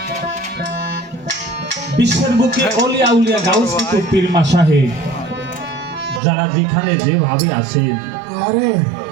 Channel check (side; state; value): left; drops out; at 6.2 s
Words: বুকে অলিয়া উলিয়া গাউস কুতুব পীর মাশায়েখ যারা যেখানে যেভাবে আছেন